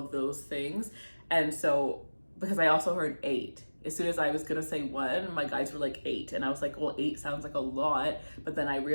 those things. And so, because I also heard 8. As soon as I was gonna say 1, my guys were like 8, and I was like, well, 8 sounds like a lot. But then I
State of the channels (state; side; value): inverted; both; correlation -1.00